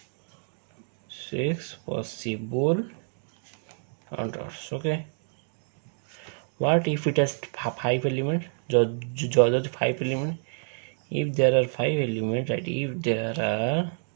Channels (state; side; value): silent; left; digital silence